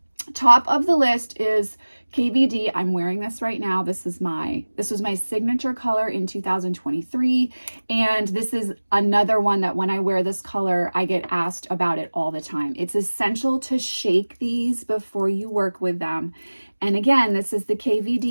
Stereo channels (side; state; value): both; inverted; correlation -1.00